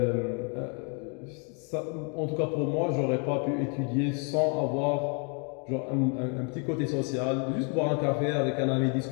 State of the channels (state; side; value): quieter; right; 37.6 dB